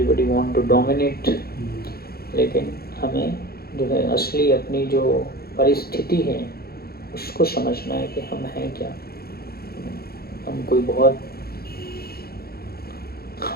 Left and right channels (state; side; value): late; right; 0.45 ms